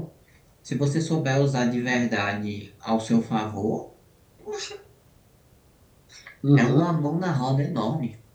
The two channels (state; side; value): identical; both; correlation 1.00